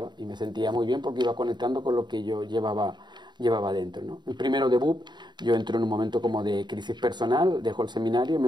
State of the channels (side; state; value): left; late; 0.21 ms